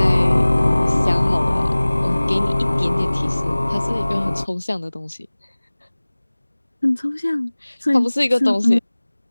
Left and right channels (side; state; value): both; inverted; correlation -1.00